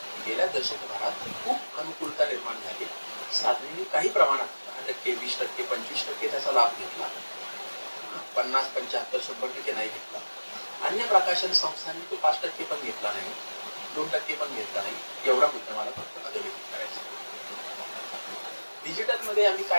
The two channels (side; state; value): both; inverted; correlation -1.00